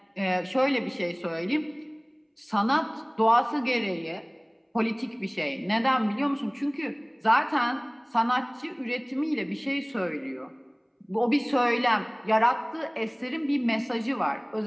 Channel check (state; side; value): identical; both; correlation 1.00